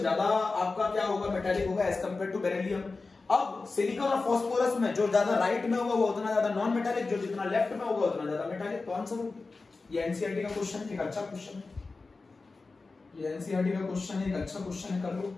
ज्यादा आपका क्या होगा? मेटेलिक होगा एज कंपेयर टू बेरिलियम। अब सिलिकॉन और फास्फोरस में जो ज्यादा राइट में होगा वो उतना ज्यादा नॉन मेटेलिक, जो जितना लेफ्ट में होगा उतना ज्यादा मेटेलिक। तो आंसर होगा ये। एनसीईआरटी का क्वेश्चन, एक अच्छा क्वेश्चन है ये। एनसीईआरटी का क्वेश्चन है, एक अच्छा क्वेश्चन है, कर लो,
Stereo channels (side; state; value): right; quieter; 3.8 dB